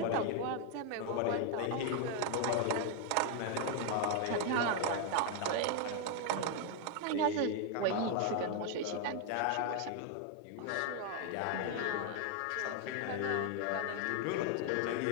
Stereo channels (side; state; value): both; different; correlation 0.00